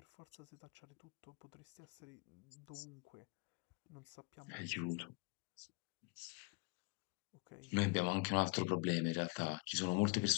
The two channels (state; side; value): quieter; right; 30.1 dB